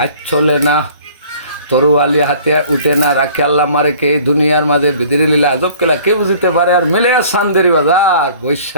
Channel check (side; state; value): both; inverted; correlation -0.51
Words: চলে না, তরুয়ালি হাতে উঠে না, রাখে আল্লাহ মারে কে দুনিয়ার মাঝে বিদিরে লীলা আজব কেলা কে বুঝতে পারে। আর মেলে সান্দেরি বাজার